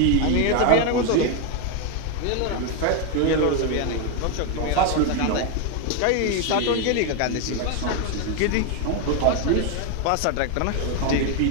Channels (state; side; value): different; both; correlation 0.01